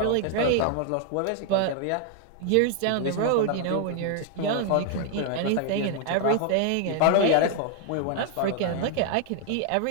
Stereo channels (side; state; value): both; different; correlation 0.00